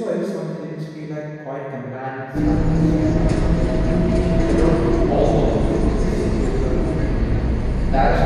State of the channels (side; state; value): both; identical; correlation 1.00